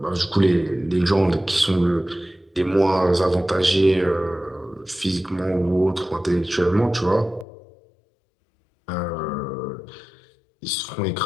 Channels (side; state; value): right; drops out; at 7.5 s